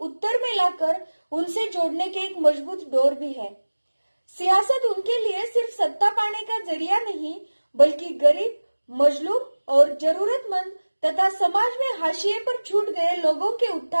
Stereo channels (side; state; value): both; inverted; correlation -1.00